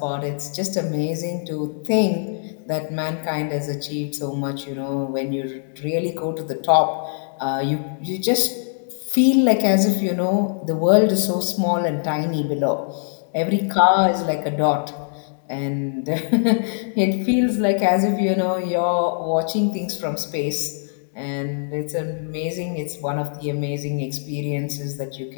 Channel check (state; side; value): silent; right; digital silence